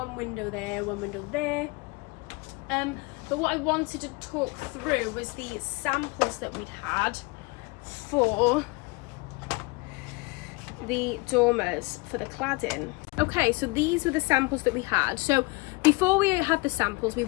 window there, one window there. But what I wanted to talk through was the samples that we'd had for the dormers for the cladding. Okay, so these were the samples that we had. So before we had the samples, we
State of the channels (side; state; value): right; quieter; 25.4 dB